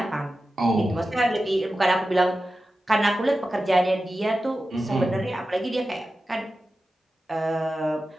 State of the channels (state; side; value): normal; both; correlation 0.93